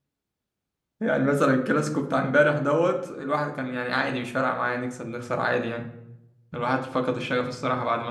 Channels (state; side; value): identical; both; correlation 1.00